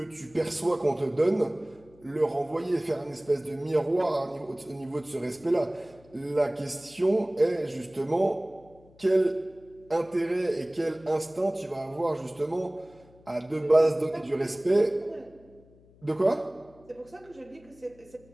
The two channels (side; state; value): left; noise; hum, 27 dB below the sound